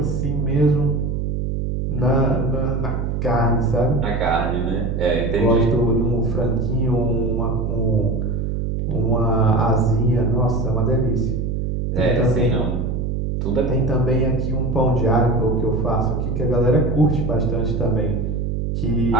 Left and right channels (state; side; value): noise; right; hum, 1 dB below the sound